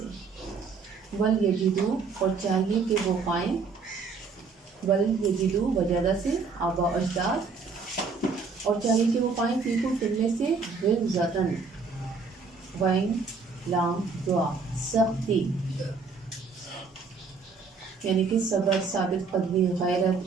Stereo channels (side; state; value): left; quieter; 4.8 dB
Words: ولیجدوا، اور چاہیے کہ وہ پائیں، ولیجدوا وجدہ سے آباء و اجداد، اور چاہیے کہ وہ پائیں فیکم، تم میں سے، غلظۃً، وین لام دعا، سختی، یعنی کہ صبر، ثابت قدمی،